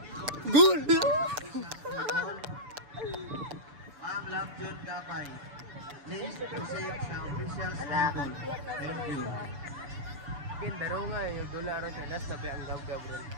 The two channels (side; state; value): left; late; 6.9 ms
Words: Goal! Ma'am Love John Gamay. Please proceed sa official stable. Thank you. Kindaro nga yung $1 sa last na ang gab-gab bro.